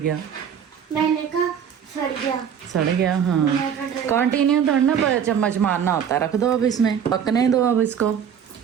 मैंने कहा सड़ गया। सड़ गया, हाँ। कंटिन्यू थोड़ा ना चम्मच मारना होता है, रख दो अब इसमें, पकने दो अब इसको।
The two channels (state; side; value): quieter; left; 8.1 dB